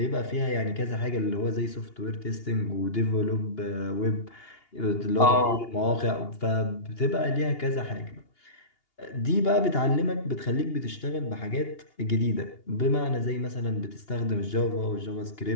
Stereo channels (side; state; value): right; late; 2.8 ms